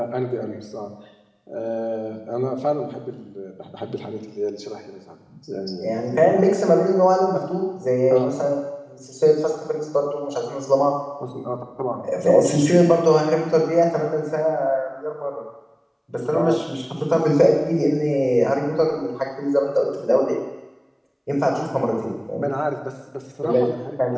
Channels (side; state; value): both; identical; correlation 1.00